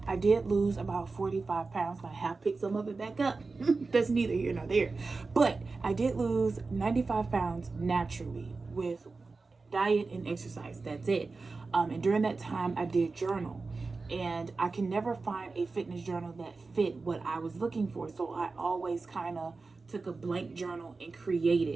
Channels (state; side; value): quieter; left; 4.0 dB